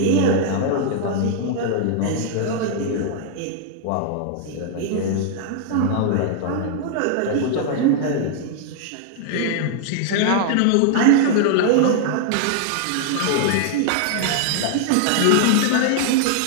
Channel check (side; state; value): both; different; correlation -0.01